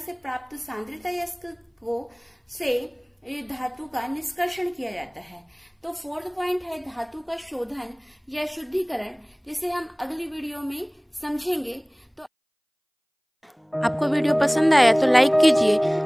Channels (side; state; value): both; identical; correlation 1.00